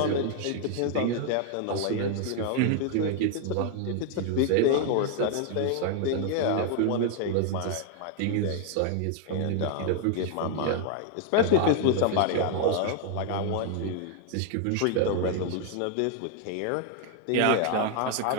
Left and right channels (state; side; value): different; both; correlation 0.00